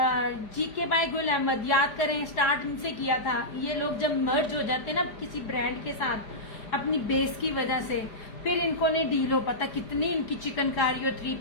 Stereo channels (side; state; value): right; late; 4.9 ms